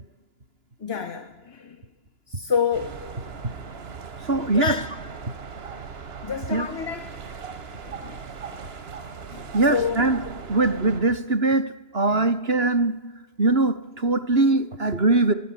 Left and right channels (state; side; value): late; left; 2.9 ms